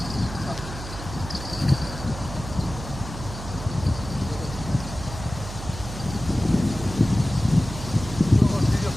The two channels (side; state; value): right; noise; hum, 10 dB below the sound